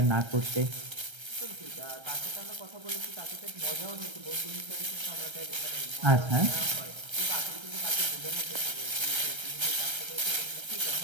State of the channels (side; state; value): left; late; 1.3 ms